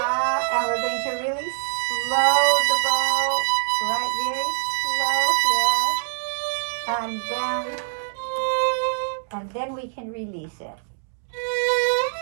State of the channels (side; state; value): left; silent; 63 dB below the other